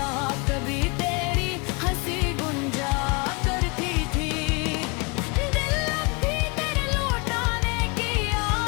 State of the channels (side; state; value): right; quieter; 29.6 dB